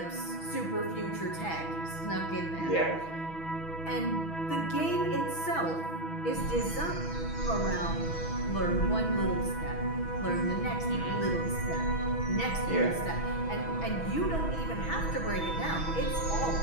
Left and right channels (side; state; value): right; late; 6.1 ms